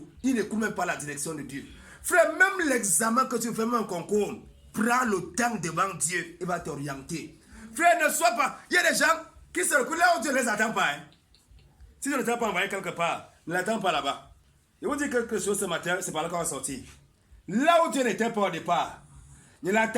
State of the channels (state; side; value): identical; both; correlation 1.00